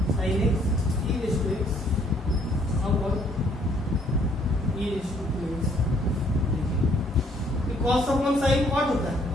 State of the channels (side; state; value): both; normal; correlation 0.64